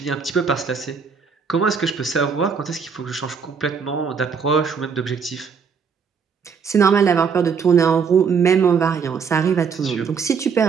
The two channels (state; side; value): quieter; left; 6.0 dB